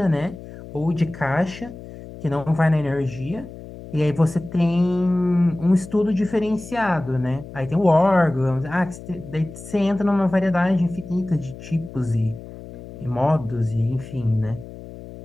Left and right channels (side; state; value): left; noise; hum, 15 dB below the sound